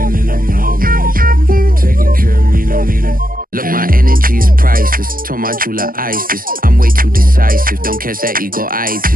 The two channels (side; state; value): left; late; 0.41 ms